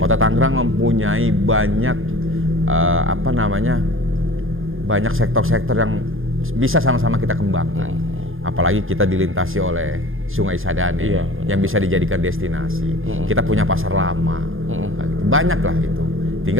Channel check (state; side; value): late; left; 0.59 ms